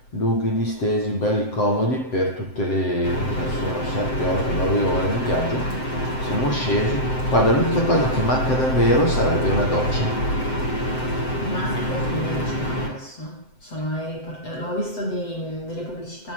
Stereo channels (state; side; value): late; right; 7.8 ms